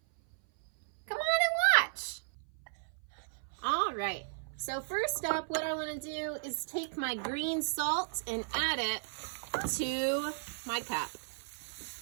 Come on and watch. All right, so first up, what I wanna do is take my green salt and add it to my cup.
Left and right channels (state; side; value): silent; left; 55 dB below the other